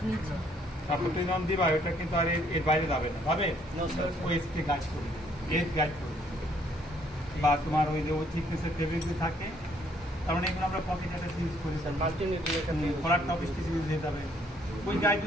তারপর তুমি যখন দিবা ওটা কিন্তু আর এর বাইরে যাবে না, যাবে ওই স্টে গাইড করবে, এজ গাইড করবে। বা তোমার ওই যে ওই থিকনেসের ফেব্রিক থাকে, তার মানে এগুলো আমরা পকেট একটা ইউজ করি, কলার টপ স্টিচ ইউজ হয়ে যাবে, ওই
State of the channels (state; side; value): normal; both; correlation 0.66